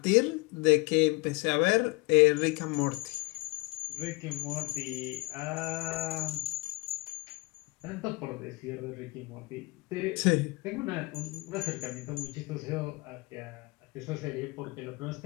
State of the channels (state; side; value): quieter; right; 25.6 dB